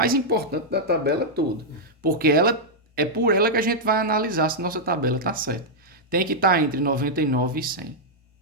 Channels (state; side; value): normal; both; correlation -0.06